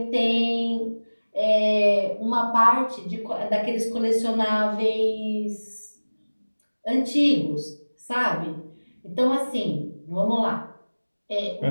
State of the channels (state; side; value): inverted; both; correlation -1.00